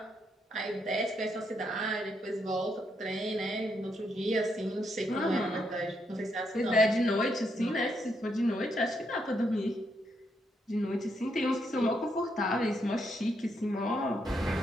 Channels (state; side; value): normal; both; correlation 0.78